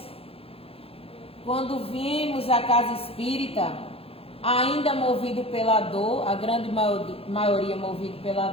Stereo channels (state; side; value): late; right; 0.28 ms